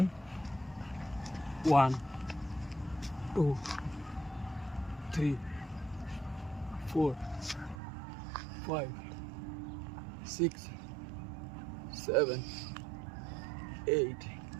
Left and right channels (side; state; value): left; drops out; at 7.8 s